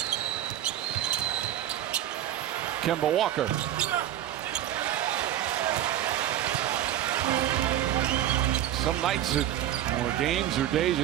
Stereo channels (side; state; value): left; quieter; 11.8 dB